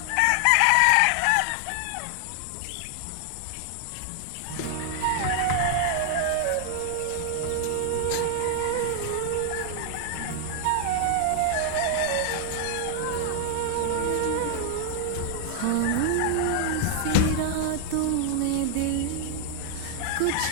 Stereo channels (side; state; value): both; different; correlation 0.00